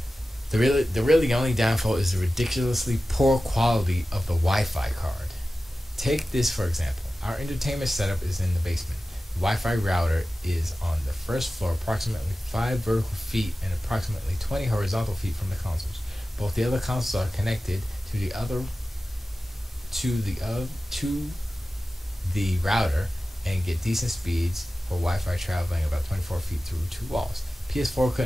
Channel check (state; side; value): normal; both; correlation 0.95